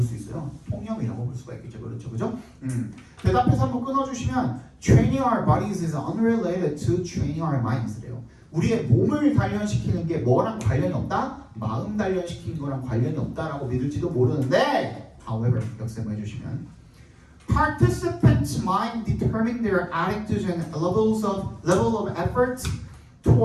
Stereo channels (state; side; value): identical; both; correlation 1.00